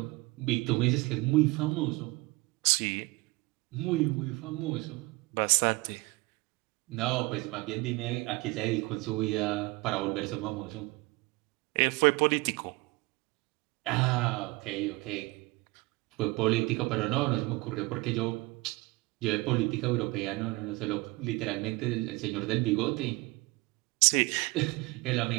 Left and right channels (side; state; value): left; quieter; 23.6 dB